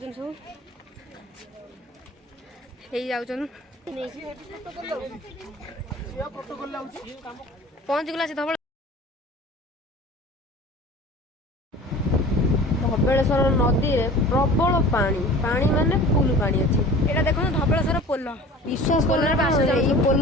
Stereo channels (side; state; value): both; normal; correlation 0.42